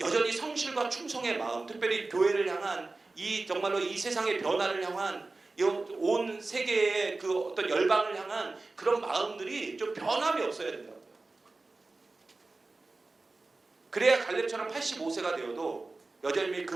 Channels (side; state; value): left; quieter; 3.4 dB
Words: 성실과 충성의 마음, 특별히 교회를 향한 정말로 이 세상의 변화를 향한 온 세계의 그 어떤 열방을 향한 그런 마음들이 좀 변함이 없어야 된다. 그래야 갈렙처럼 85세가 되어도 여전히 그